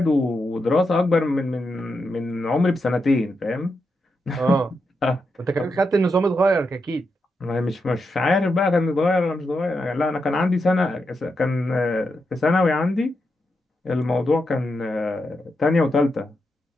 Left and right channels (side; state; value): both; normal; correlation 0.85